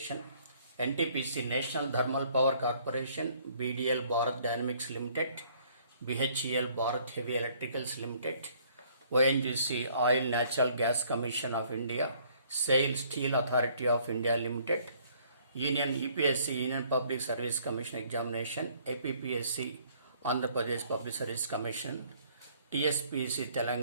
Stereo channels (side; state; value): both; inverted; correlation -0.61